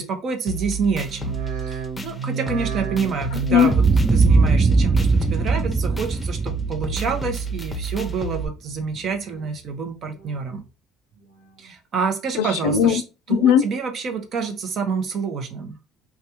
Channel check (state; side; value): normal; both; correlation 0.61